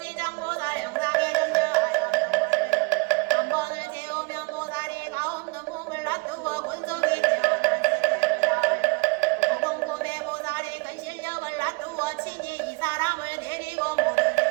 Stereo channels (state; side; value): quieter; left; 26.7 dB